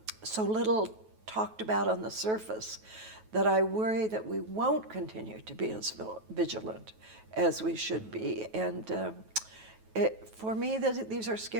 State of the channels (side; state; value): left; late; 9.3 ms